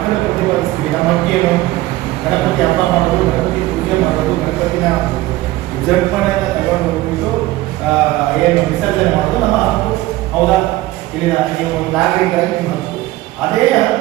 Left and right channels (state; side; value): quieter; left; 17.5 dB